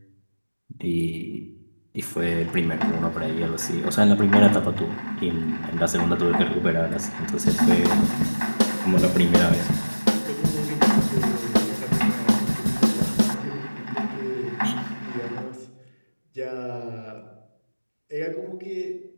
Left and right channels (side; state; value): both; inverted; correlation -1.00